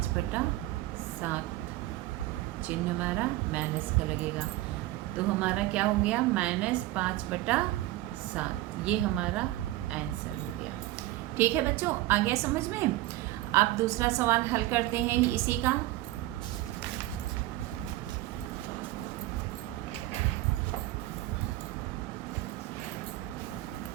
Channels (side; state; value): left; quieter; 16.8 dB